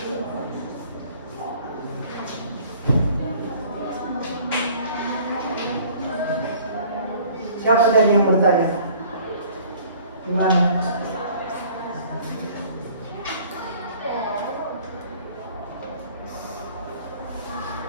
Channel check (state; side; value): inverted; both; correlation -0.52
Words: Siapa tadi yang bertanya? Gimana?